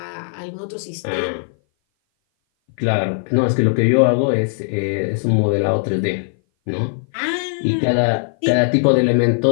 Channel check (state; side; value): silent; right; 58 dB below the other